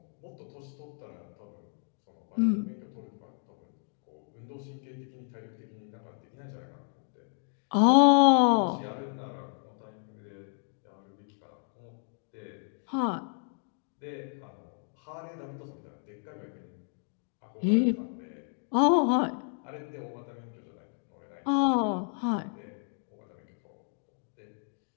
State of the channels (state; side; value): silent; right; 56 dB below the other